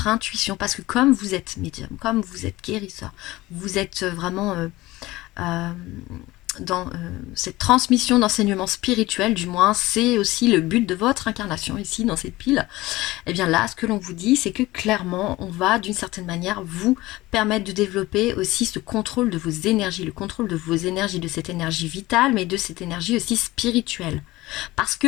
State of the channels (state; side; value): quieter; right; 18.9 dB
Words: intuition, parce que comme vous êtes médium, comme vous êtes guérisseur, vous êtes vraiment dans cette transmission d'enseignement spirituel, du moins c'est aussi le but de votre incarnation ici dans cette pile, et bien là ce que l'on vous dit c'est que clairement on va d'une certaine manière vous permettre de développer aussi ce contrôle de vos énergies, le contrôle de vos énergies, de cette énergie vitale mais de cette énergie aussi spirituelle. Parce